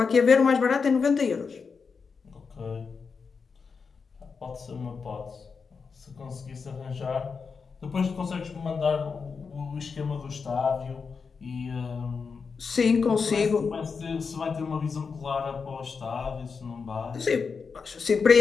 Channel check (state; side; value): quieter; right; 5.3 dB